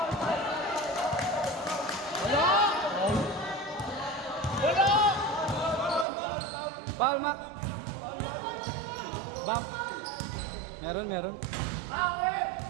Foul, Mac. Bump. Meron. Meron,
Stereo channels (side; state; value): left; drops out; at 6.1 s